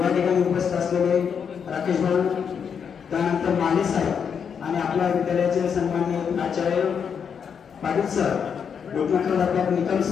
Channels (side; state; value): right; quieter; 7.0 dB